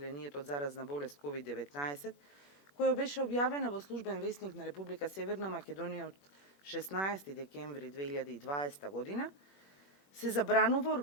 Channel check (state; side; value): late; right; 21 ms